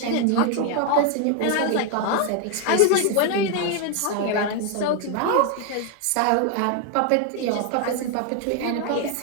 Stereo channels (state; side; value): different; both; correlation 0.01